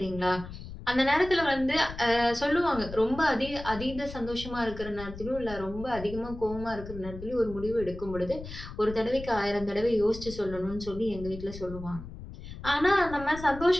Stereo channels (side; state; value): left; noise; rumble, 12 dB below the sound